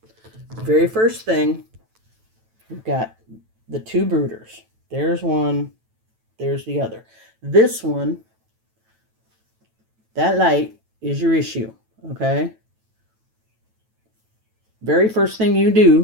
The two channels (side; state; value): left; late; 9.1 ms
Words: Very first thing, we've got the two brooders. There's one, there's the other. This one, that light is your issue, okay? Very first thing you